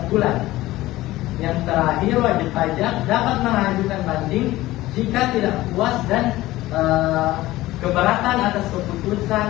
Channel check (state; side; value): quieter; right; 17.1 dB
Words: bulan. Yang terakhir, wajib pajak dapat mengajukan banding jika tidak puas dan keberatan atas keputusan